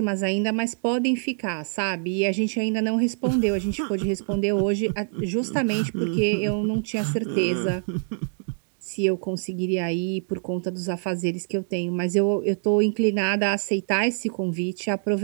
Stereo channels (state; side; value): silent; left; digital silence